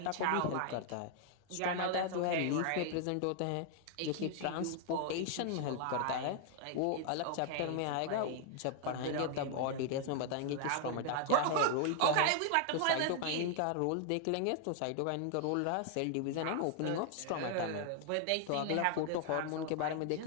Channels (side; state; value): both; different; correlation 0.00